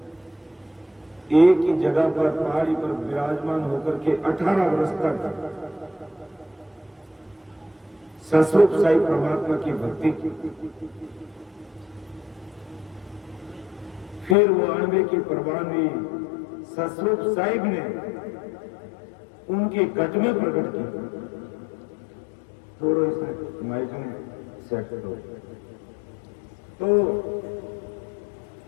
एक ही जगह पर पहाड़ी पर विराजमान होकर के 18 वर्ष तक सस्वरूप साई परमात्मा की भक्ति की। फिर वो अणबे की परवानगी सस्वरूप साहिब ने उनके गज में प्रकट की। थोड़ा इसमें माइक में सेट करो। तो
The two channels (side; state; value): right; drops out; at 14.4 s